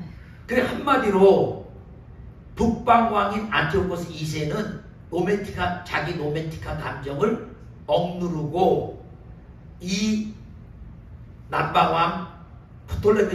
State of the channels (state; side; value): identical; both; correlation 1.00